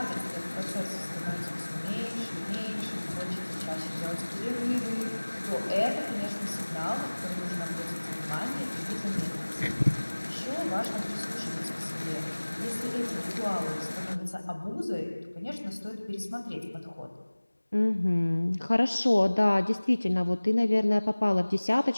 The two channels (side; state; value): both; inverted; correlation -1.00